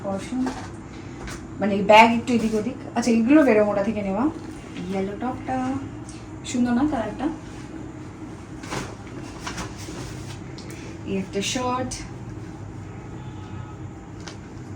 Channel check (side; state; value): both; identical; correlation 1.00